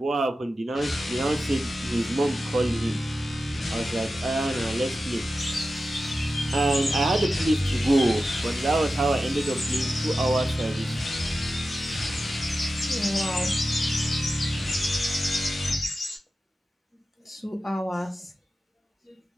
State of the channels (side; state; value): both; normal; correlation 0.92